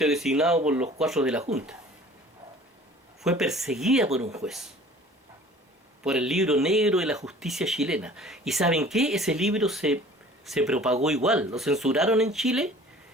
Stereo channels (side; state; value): both; normal; correlation 0.48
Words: designado por los 4 de la Junta. Fue perseguida por un juez, por el libro negro de la justicia chilena. ¿Y saben qué? Ese libro se propagó igual, lo censuraron en Chile,